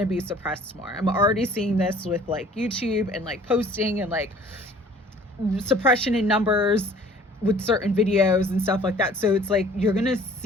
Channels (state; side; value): normal; both; correlation 0.52